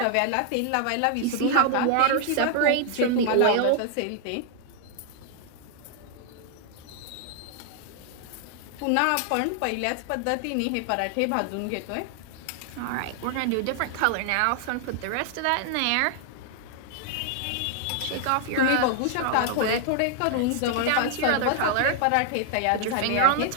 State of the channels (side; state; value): both; different; correlation 0.00